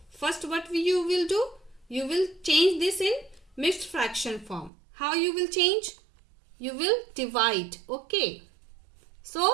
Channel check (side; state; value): left; drops out; at 4.7 s